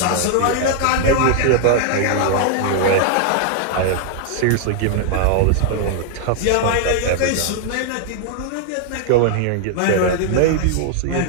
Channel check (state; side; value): different; both; correlation 0.00